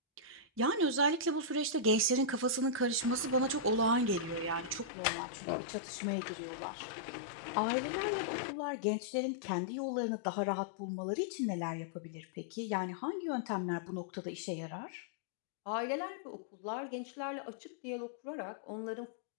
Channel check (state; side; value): drops out; right; at 4.9 s